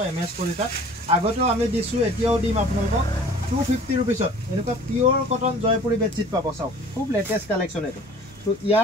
এমএস কলিতাত আগতেও আমি দিছো এতিয়াও দিম আপোনালোকক 250 रुपीसत এনেকুৱা পিওৰ কটন জয়পুৰী বেডशीट পাব সব খুব লেটেস্ট কালেকশন এটো তো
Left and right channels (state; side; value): normal; both; correlation 0.47